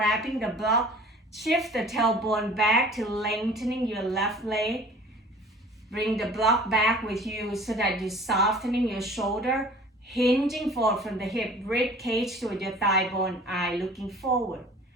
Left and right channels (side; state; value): both; normal; correlation 0.46